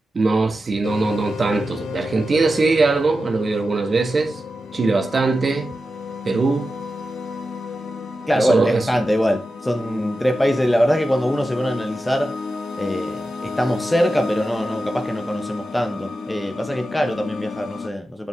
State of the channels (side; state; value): both; normal; correlation 0.91